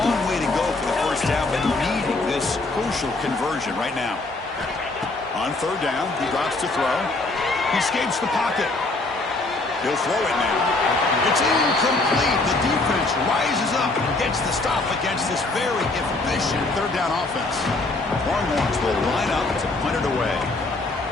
way to go for the first down, but needing this crucial conversion right now. On third down, he drops to throw. He escapes the pocket. He'll throw it now. It's incomplete. The defense rises up and gets the stop against this very efficient third down offense. Longhorns will line up to punt it away.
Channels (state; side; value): quieter; right; 3.2 dB